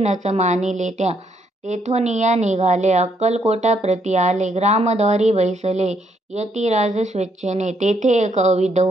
मानिले त्या, तेथोनिया निघाले अक्कलकोटा प्रति आले, ग्रामद्वारी बैसले यतिराज स्वेच्छेने, तेथे एक अविध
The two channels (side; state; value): both; normal; correlation 0.72